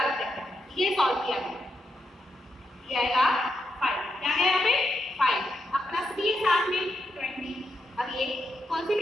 ब्रैकेट, ये सॉल्व किया गया, ये आएगा 5। क्या है यहाँ पे 5, अब प्लस भी है साथ में 20। अब ये कौन सी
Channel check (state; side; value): normal; both; correlation 0.83